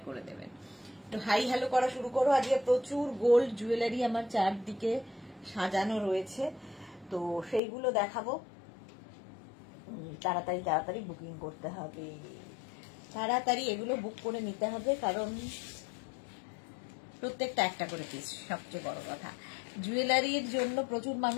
করে দেবেন। তো হাই হ্যালো করা শুরু করো। আজকে প্রচুর গোল্ড জুয়েলারি আমার চারদিকে সাজানো রয়েছে, তো সেইগুলো দেখাবো। তাড়াতাড়ি তাড়াতাড়ি বুকিং করতে হবে, তাড়াতাড়ি এগুলো বুক করে নিতে হবে, কারণ প্রত্যেকটা একটা করে পিস। সবচেয়ে বড় কথা, জুয়েলারির জন্য প্রচুর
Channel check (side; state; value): right; drops out; at 7.6 s